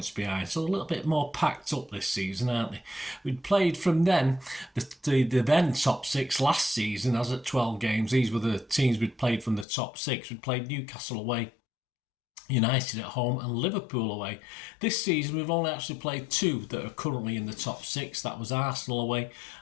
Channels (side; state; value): right; drops out; at 9.7 s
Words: behind. So a little bit more packed up this season, aren't they? We'd played from then, the then top 6 last season, as at 12 games. These were the teams we'd played from the top 6. We'd played Newcastle away, United at home and Liverpool away. This season we've only actually played 2 that are currently in the top 6. That was Arsenal away